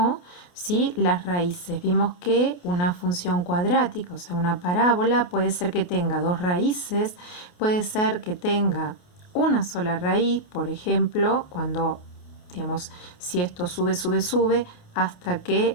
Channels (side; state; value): right; late; 28 ms